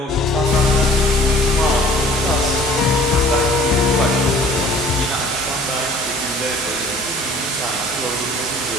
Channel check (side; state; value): both; normal; correlation 0.50